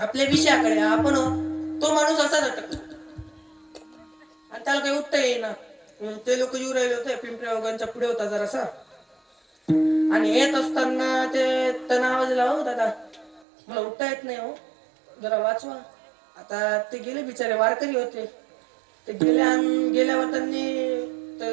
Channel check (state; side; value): drops out; left; at 13.5 s